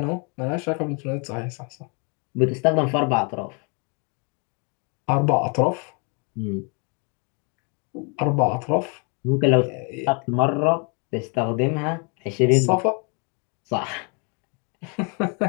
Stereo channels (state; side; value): quieter; right; 35.2 dB